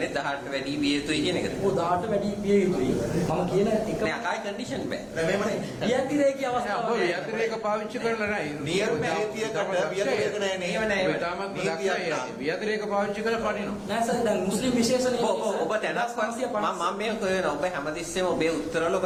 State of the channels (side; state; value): both; identical; correlation 1.00